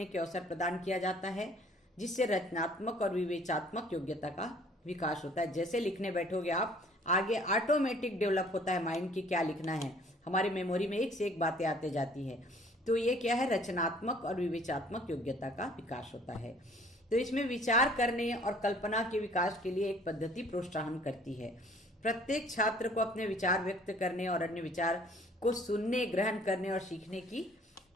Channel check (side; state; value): both; normal; correlation 0.56